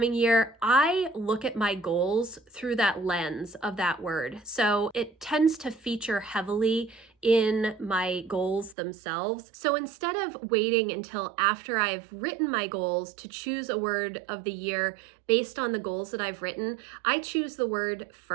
year, I look at my goals through that lens of that word. So it tends to feature heavily in my goals themselves. So instead of waiting until after I've written my goals to choose a word of the year based on the goals that I've written, I choose the word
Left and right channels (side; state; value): left; drops out; at 8.8 s